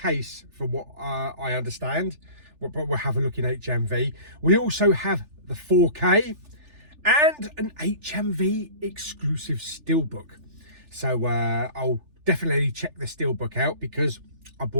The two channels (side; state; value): left; late; 3.4 ms